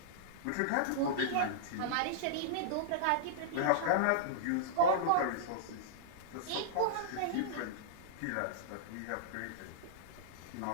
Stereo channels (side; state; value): both; different; correlation -0.02